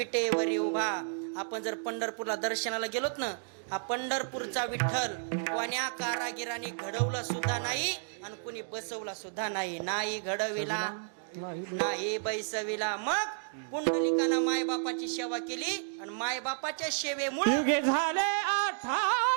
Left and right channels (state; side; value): silent; left; digital silence